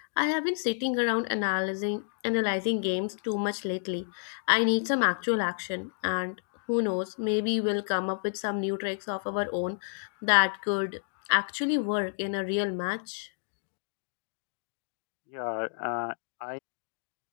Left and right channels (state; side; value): silent; right; digital silence